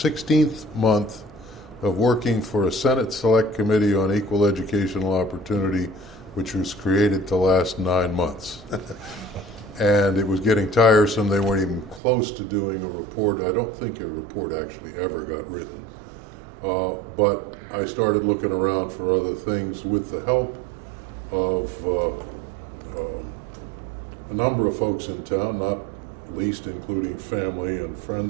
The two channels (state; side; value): drops out; left; at 12.0 s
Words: month of working for a Senate Select Committee on Equal Educational Opportunity, which was created to last 9 months. And it was getting tiresome. They weren't even close to doing a report. I don't think a report actually ever got written. But I started looking around for other things with the help of a number of folks in town, not least including family and